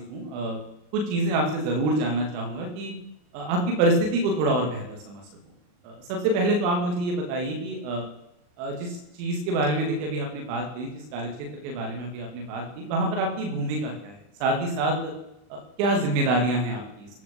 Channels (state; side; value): late; left; 40 ms